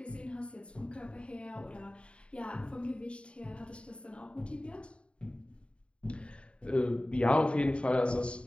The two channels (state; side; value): late; right; 0.057 ms